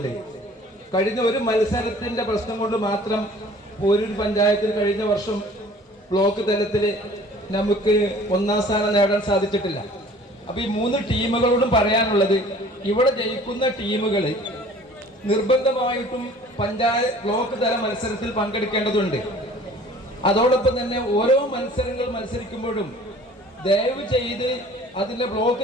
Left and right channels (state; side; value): normal; both; correlation 0.50